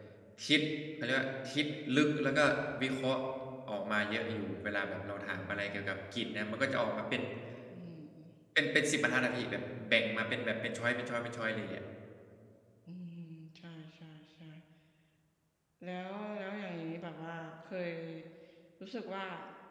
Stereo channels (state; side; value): identical; both; correlation 1.00